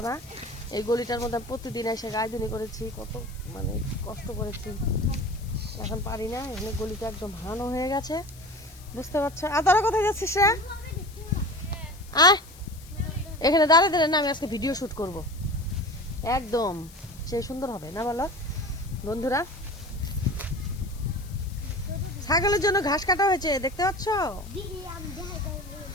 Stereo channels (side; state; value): left; noise; hiss, 22 dB below the sound